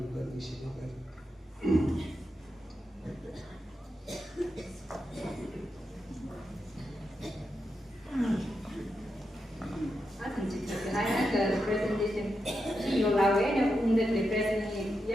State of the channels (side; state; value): both; normal; correlation 0.86